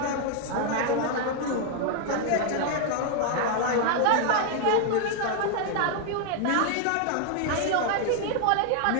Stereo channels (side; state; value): both; different; correlation 0.00